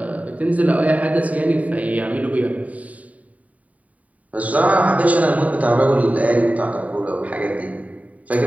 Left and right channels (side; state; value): left; late; 0.070 ms